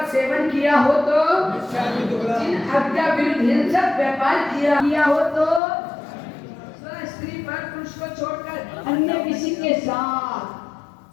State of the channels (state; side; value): drops out; right; at 5.6 s